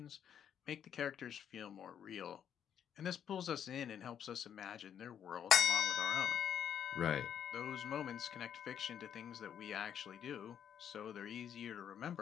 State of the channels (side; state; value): right; quieter; 8.9 dB